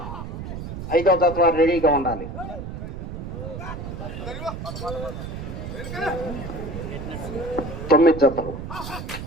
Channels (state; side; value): noise; right; rumble, 7 dB below the sound